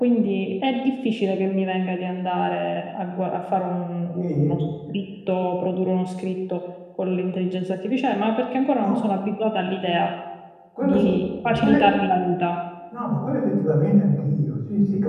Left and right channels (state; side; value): identical; both; correlation 1.00